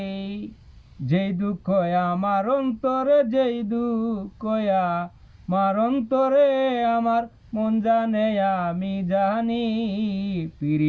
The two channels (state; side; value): identical; both; correlation 1.00